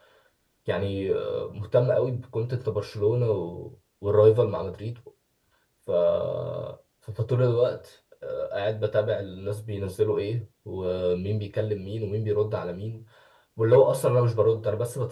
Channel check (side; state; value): both; identical; correlation 1.00